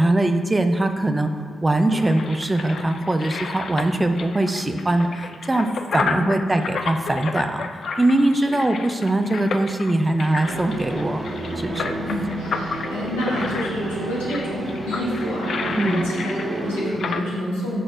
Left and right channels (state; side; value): normal; both; correlation 0.90